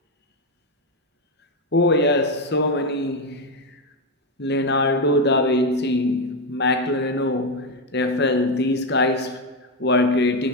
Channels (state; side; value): normal; both; correlation 0.09